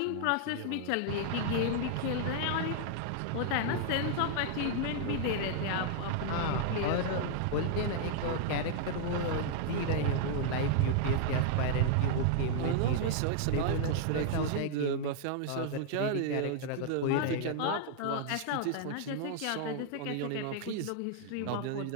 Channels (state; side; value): different; both; correlation -0.01